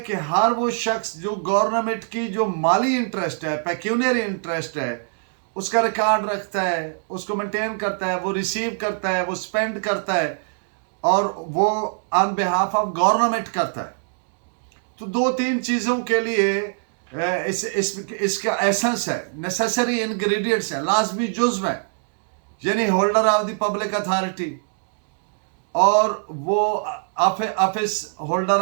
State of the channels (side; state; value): left; silent; digital silence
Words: हर वो शख्स जो गवर्नमेंट की जो माली इंटरेस्ट है, पेक्यूनियरी इंटरेस्ट है, उसका रिकॉर्ड रखता है, उसको मेंटेन करता है, वो रिसीव करता है, वो स्पेंड करता है, और वो ऑन बिहाफ ऑफ गवर्नमेंट करता है। तो दो तीन चीज़ों के लिए इसका एसेंस है, नेसेसरी इंग्रेडिएंट्स है, लाजमी जुज़्व है। यानी holder of the public authority, और वो office holder